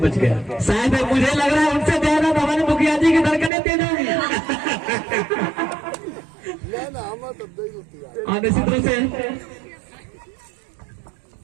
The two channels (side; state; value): left; drops out; at 3.5 s